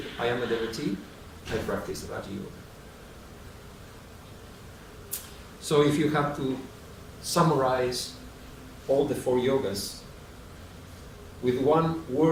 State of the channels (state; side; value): identical; both; correlation 1.00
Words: I am a devotee, I practice Raja Yoga. So if you have to summarize all the 4 yogas with one